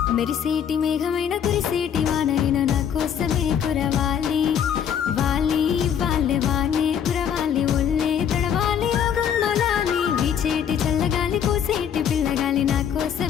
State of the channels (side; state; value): right; quieter; 8.5 dB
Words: మెరిసేటి మేఘమైన కురిసేటి వానైన నా కోసమే కురవాలి వాలి వాళ్ళే వానే కురవాలి ఒళ్ళే తడవాలి ఓ గుమ్మలాలి వీచేటి చల్లగాలి కోసేటి పిల్లగాలి నా